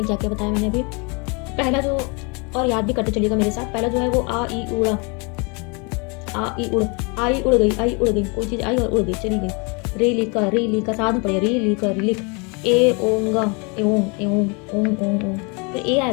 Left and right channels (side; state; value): right; quieter; 31.8 dB